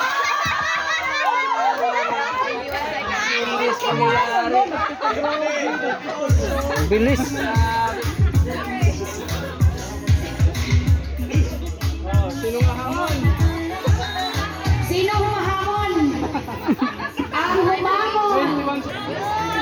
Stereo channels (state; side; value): identical; both; correlation 1.00